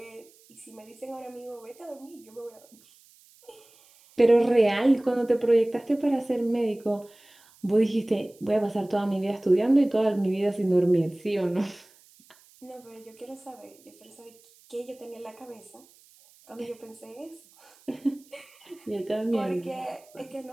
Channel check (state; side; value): noise; right; hiss, 28 dB below the sound